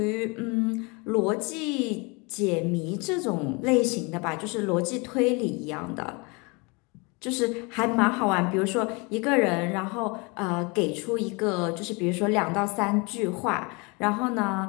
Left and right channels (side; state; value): right; quieter; 29.0 dB